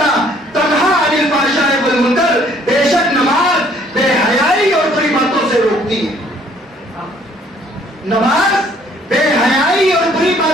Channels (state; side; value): normal; both; correlation 0.61